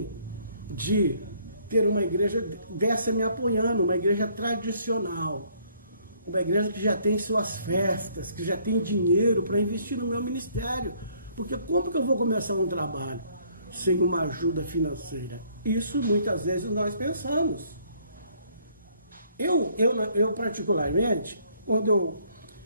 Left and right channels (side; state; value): both; inverted; correlation -0.64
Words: de ter uma igreja dessa me apoiando, uma igreja tradicional, uma igreja que já tem suas festas, que já tem dinheiro para investir no meu ministério. Porque como que eu vou começar um trabalho sem uma ajuda financeira? Isso muitas vezes nós pensamos. Eu particularmente, quando eu